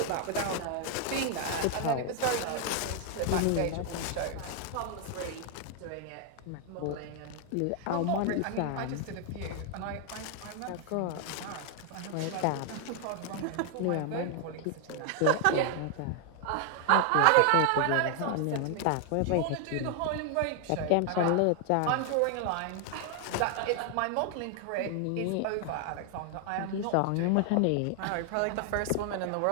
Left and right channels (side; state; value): both; different; correlation 0.00